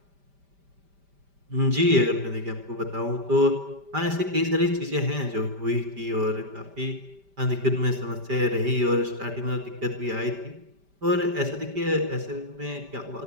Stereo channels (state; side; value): late; left; 5.1 ms